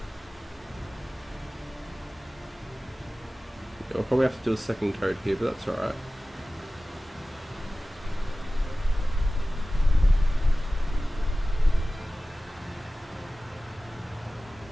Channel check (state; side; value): normal; both; correlation 0.96